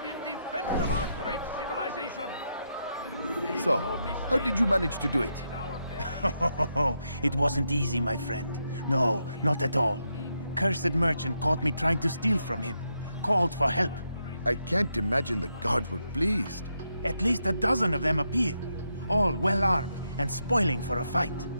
in defense of our great civilization. So, how did you manage to do it? It wasn't easy, my friend. No, not at all. Cursed merchant caught me trying to steal from him. Called for help. I can't imagine the guards were pleased. At least a dozen of them appeared. All well-armed and spoiling for a fight.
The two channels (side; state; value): both; inverted; correlation -0.82